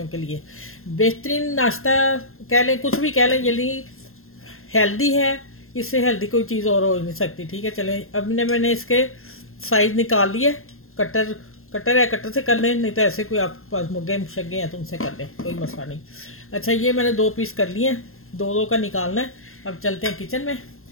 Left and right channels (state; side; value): late; right; 0.61 ms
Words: के लिए। बेहतरीन नाश्ता कह लें, कुछ भी कह लें, यदि हेल्दी है, इससे हेल्दी कोई चीज़ और हो नहीं सकती। ठीक है, चलें, अब मैंने इसके साइज़ निकाल लिए। कटर कटर है, कटर से कर लें, नहीं तो ऐसे कोई आपके पास मुग्गे शग्गे हैं तो उनसे कर लें, कोई मसला नहीं। अच्छा, ये मैंने 2 पीस कर लिए हैं, दो दो का निकालना है। अब चलते हैं किचन में